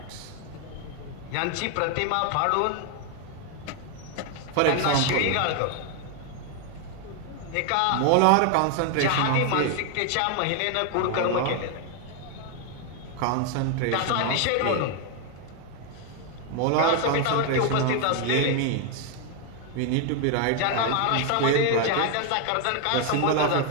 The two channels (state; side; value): different; both; correlation 0.01